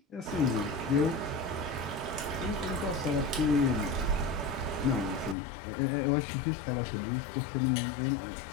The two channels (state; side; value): drops out; right; at 5.4 s